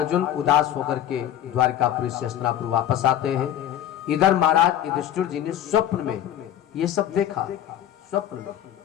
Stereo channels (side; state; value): right; quieter; 11.0 dB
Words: उदास होकर के द्वारकापुरी से हस्तिनापुर वापस आते हैं। इधर महाराज युधिष्ठिर जी ने स्वप्न में ये सब देखा, स्वप्न में